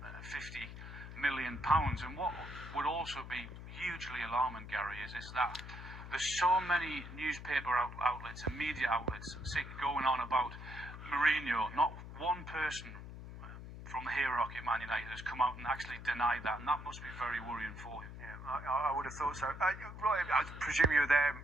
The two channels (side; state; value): left; noise; hum, 11 dB below the sound